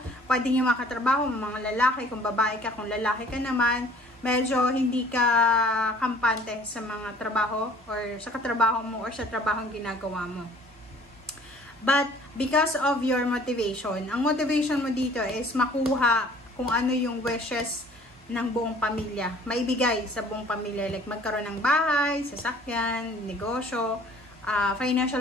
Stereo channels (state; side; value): normal; both; correlation 0.53